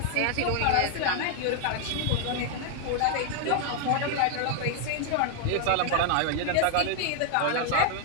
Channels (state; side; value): different; both; correlation 0.00